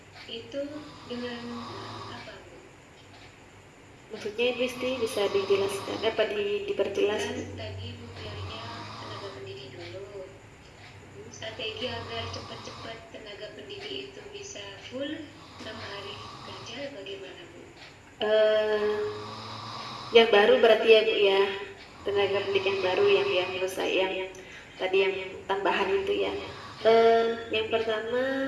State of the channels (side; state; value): both; identical; correlation 1.00